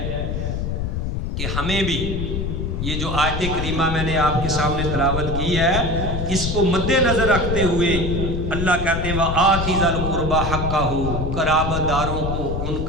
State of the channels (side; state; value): left; noise; rumble, 2 dB below the sound